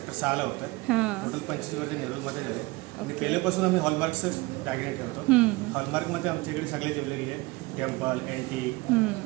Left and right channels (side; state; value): left; quieter; 22.8 dB